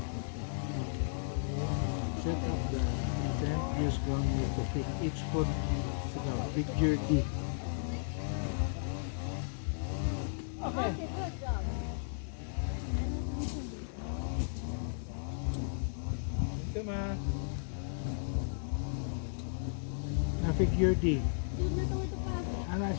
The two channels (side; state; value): right; silent; 55 dB below the other